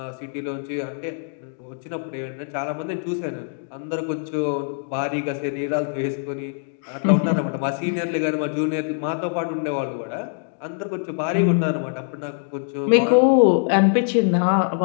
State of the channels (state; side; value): silent; right; digital silence